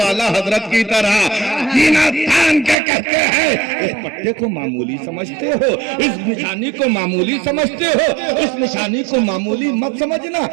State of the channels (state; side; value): drops out; left; at 2.8 s